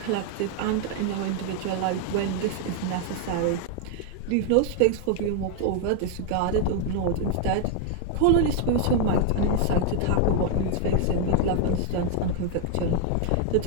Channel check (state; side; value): different; both; correlation 0.00